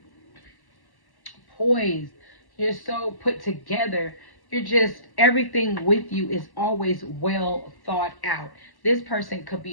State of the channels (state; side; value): late; right; 1.1 ms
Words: poised, you're so put together. You're just, everything with you is always well thought out. This person could